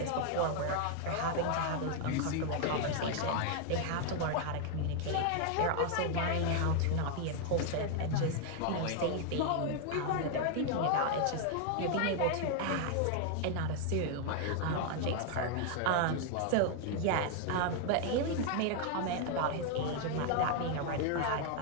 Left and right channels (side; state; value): both; different; correlation 0.00